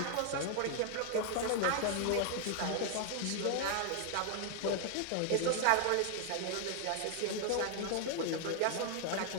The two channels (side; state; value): both; different; correlation 0.01